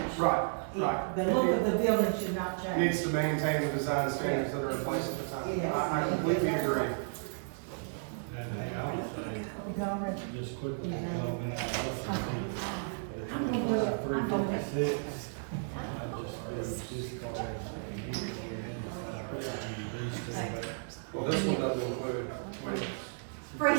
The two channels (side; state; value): left; silent; digital silence